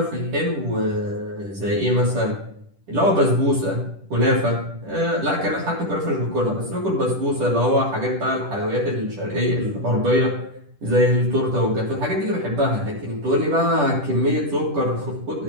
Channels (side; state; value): left; late; 10 ms